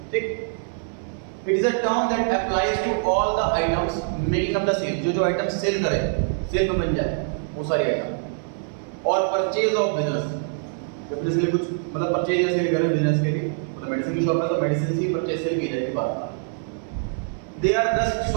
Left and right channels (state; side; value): silent; left; 58 dB below the other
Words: ठीक, it is a term that applies to all the items making up the sale, जो आइटम सेल करे, सेल में बन जाए वो सारी आइटम। और परचेज ऑफ बिजनेस, बिजनेस के लिए कुछ मतलब परचेज या सेल करें बिजनेस के लिए, मतलब मेडिसिन की शॉप है तो मेडिसिन की परचेज सेल की जाएगी बात। They are thus